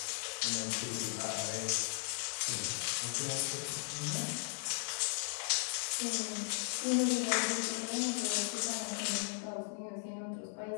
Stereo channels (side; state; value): right; silent; digital silence